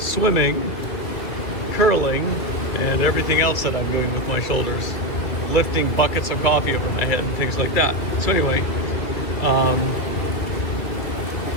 curling, and everything else that I'm doing with my shoulders. Lifting buckets of coffee over my head and things like that. So anyway,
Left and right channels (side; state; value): right; late; 2.7 ms